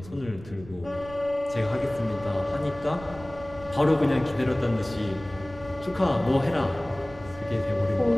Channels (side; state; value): right; noise; rumble, 17 dB below the sound